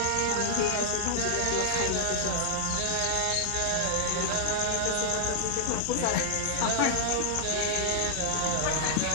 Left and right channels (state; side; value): different; both; correlation 0.00